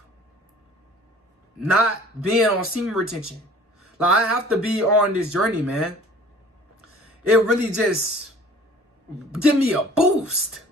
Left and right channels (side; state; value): both; normal; correlation 0.49